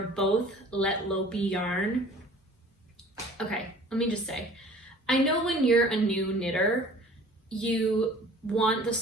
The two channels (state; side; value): normal; both; correlation 0.48